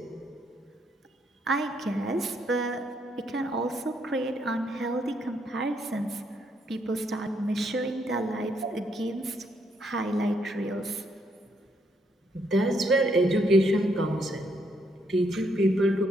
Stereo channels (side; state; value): both; normal; correlation 0.74